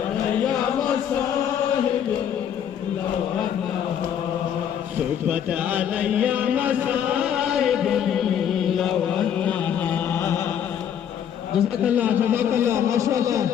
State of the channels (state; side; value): quieter; right; 9.1 dB